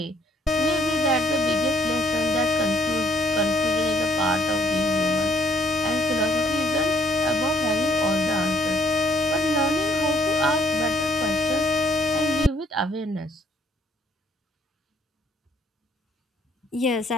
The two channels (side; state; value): both; normal; correlation 0.64